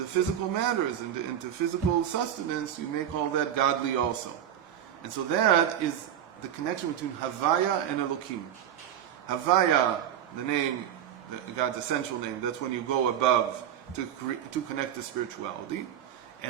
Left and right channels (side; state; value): left; quieter; 10.2 dB